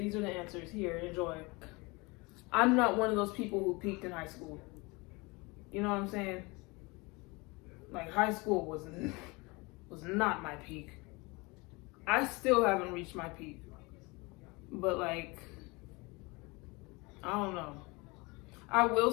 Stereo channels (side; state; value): right; quieter; 25.9 dB